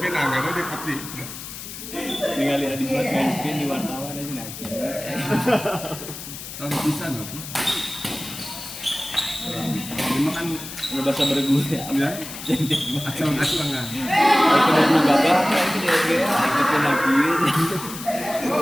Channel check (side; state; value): left; noise; hiss, 11 dB below the sound